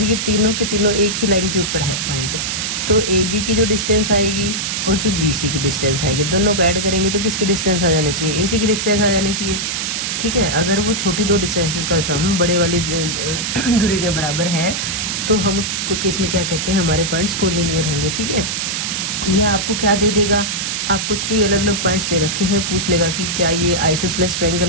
ये तीनों के तीनों एक ही लाइन के ऊपर है पॉइंट, तो AB की जो डिस्टेंस आएगी और जो BC की डिस्टेंस आएगी, दोनों को ऐड करेंगे तो किसकी डिस्टेंस आ जानी चाहिए, AC की डिस्टेंस आ जानी चाहिए, ठीक है। अगर वो छोटी 2 डिस्टेंसेस का सम बड़े वाली दूरी के बराबर है तो हम उस केस में क्या कहते हैं, हमारे पॉइंट्स कोलिनियर होंगे, ठीक है। यह आपको क्या दे देगा, आपको 3 अलग अलग पॉइंट्स दे रखे हैं, पूछ लेगा कि क्या ये आइसोसेलेस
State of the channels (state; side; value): noise; right; hiss, 2 dB below the sound